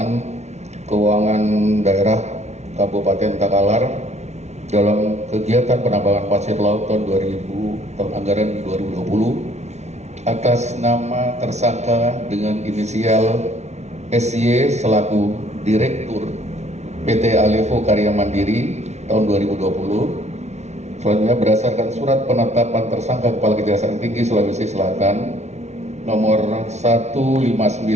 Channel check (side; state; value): left; late; 0.32 ms